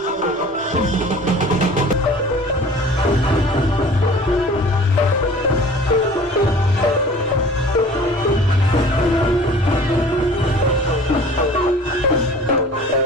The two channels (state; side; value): normal; both; correlation 0.46